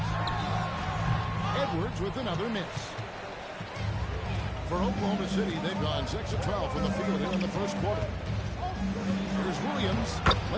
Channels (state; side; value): identical; both; correlation 1.00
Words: Edwards with another miss. For Oklahoma City, they've gone 6 of 12 from the field here in the first quarter. Here's Williams.